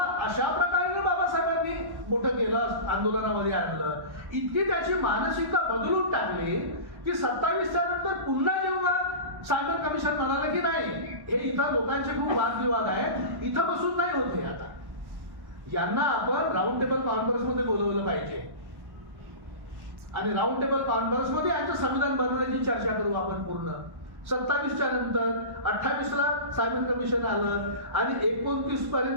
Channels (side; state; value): left; late; 1.1 ms